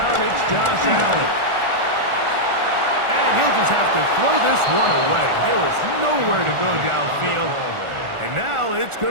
it's Josh Allen. And he'll just have to throw this one away. There was nowhere to go downfield. And now it's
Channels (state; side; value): late; left; 1.4 ms